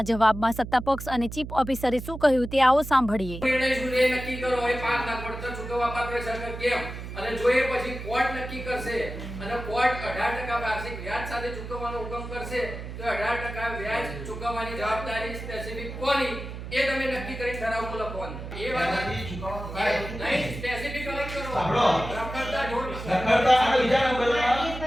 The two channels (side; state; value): right; noise; hum, 9 dB below the sound